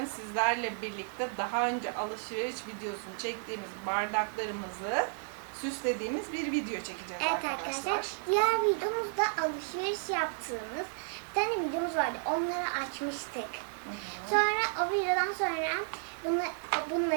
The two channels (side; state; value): left; silent; 56 dB below the other